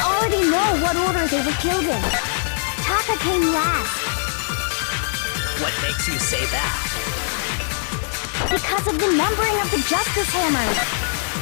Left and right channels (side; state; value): right; silent; digital silence